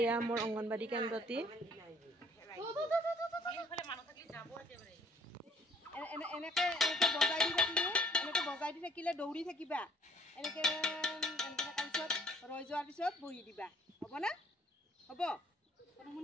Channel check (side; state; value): both; normal; correlation 0.59